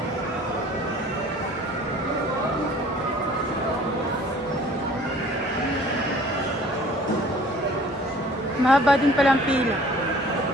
Mahaba din palang pila.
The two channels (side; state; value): both; normal; correlation 0.51